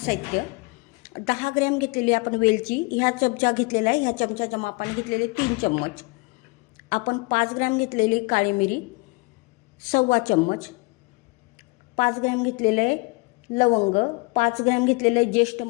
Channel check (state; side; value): quieter; right; 28.1 dB